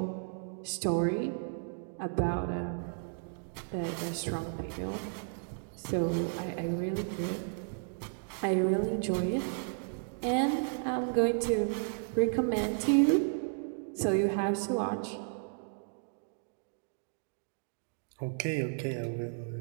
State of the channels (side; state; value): left; silent; digital silence